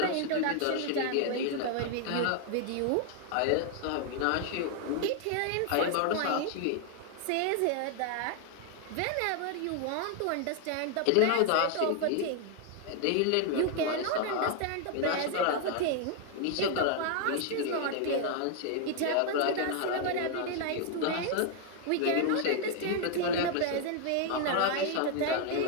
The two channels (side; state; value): both; different; correlation 0.00